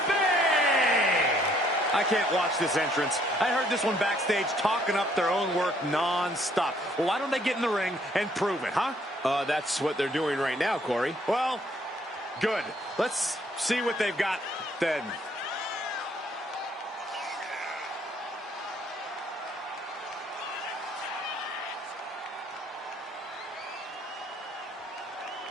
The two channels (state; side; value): normal; both; correlation 0.65